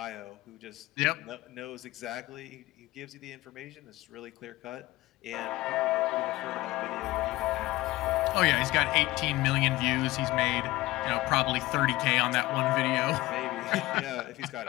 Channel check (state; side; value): quieter; right; 18.5 dB